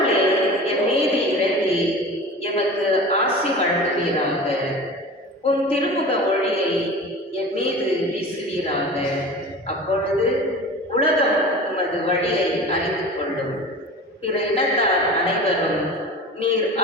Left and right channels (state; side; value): normal; both; correlation 0.35